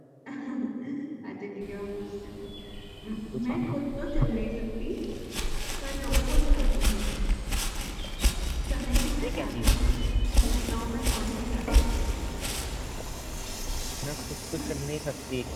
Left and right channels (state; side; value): identical; both; correlation 1.00